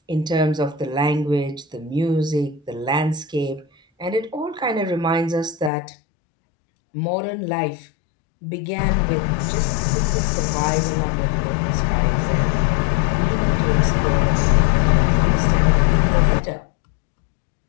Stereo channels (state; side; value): drops out; right; at 5.7 s